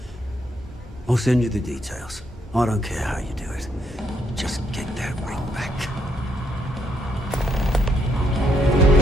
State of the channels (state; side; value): normal; both; correlation 0.72